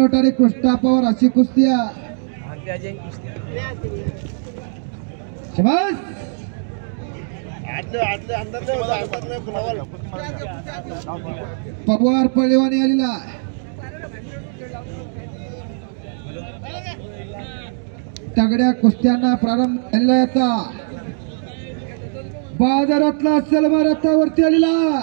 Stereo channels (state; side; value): silent; left; digital silence